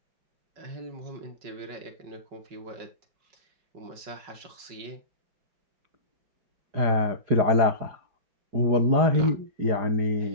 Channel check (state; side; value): late; left; 5.3 ms